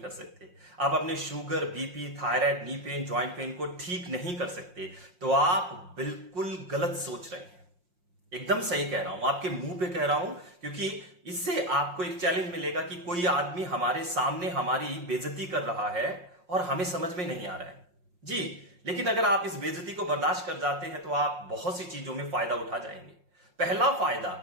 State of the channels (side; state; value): left; late; 5.6 ms